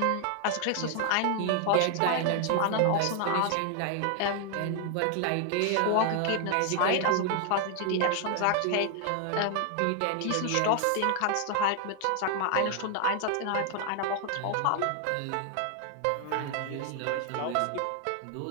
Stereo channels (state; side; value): different; both; correlation 0.00